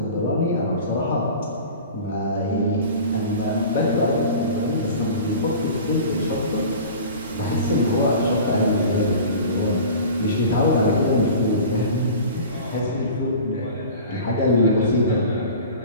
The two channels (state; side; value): inverted; both; correlation -0.39